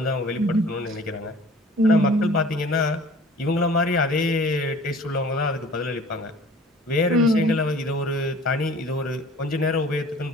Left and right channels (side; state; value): both; normal; correlation 0.48